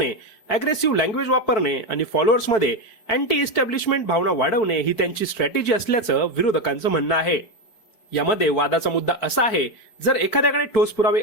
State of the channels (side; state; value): right; late; 4.6 ms